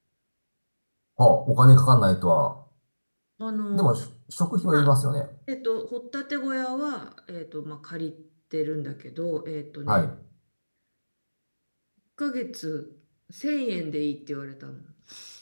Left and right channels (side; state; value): both; inverted; correlation -1.00